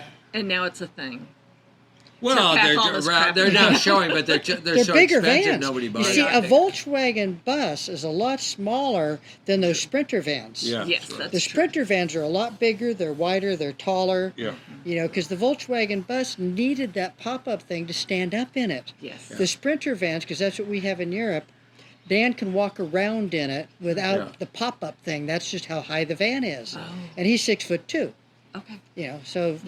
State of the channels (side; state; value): both; identical; correlation 1.00